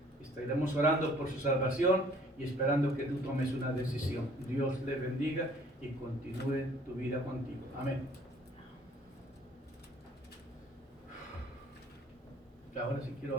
Estaremos orando por su salvación y esperando que tú tomes una decisión. Dios le bendiga y continúe tu vida contigo. Amén. Ahora sí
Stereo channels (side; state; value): both; normal; correlation 0.56